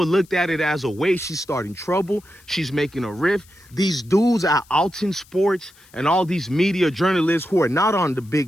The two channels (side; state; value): left; noise; hiss, 28 dB below the sound